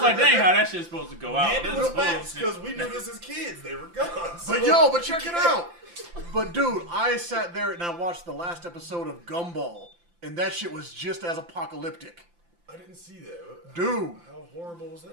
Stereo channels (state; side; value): late; left; 5.8 ms